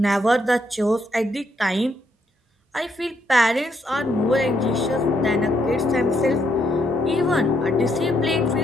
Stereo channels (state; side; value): normal; both; correlation 0.75